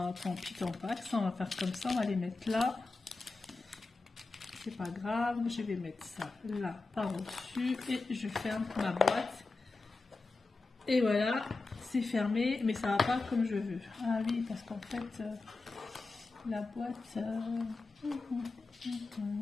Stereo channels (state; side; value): quieter; right; 3.6 dB